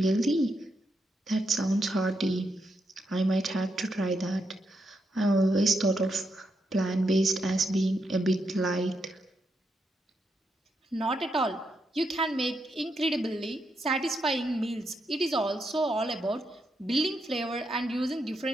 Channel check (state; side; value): normal; both; correlation 0.81